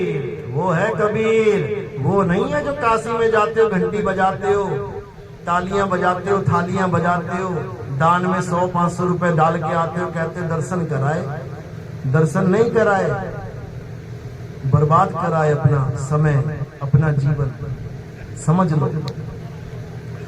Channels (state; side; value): identical; both; correlation 1.00